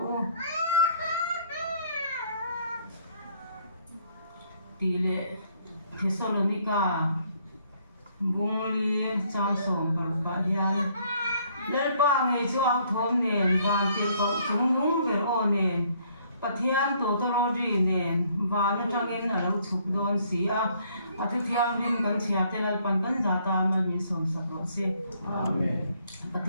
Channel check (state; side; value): inverted; both; correlation -0.65